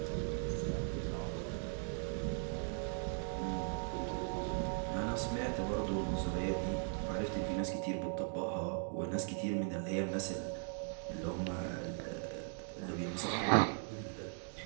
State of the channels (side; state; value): left; silent; 52 dB below the other